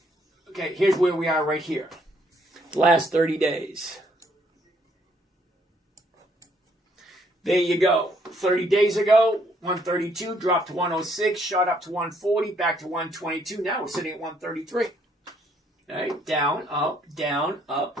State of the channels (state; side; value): normal; both; correlation 0.68